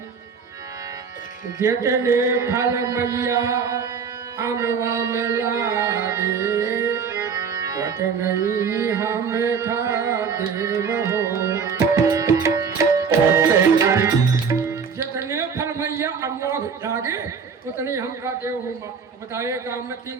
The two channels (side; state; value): left; quieter; 6.0 dB